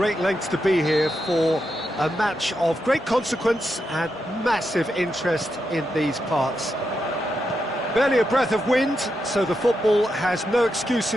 lengths to be here for a match of great consequence and massive interest in these parts. Barely a breath of wind, so the football has no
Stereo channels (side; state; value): both; normal; correlation 0.85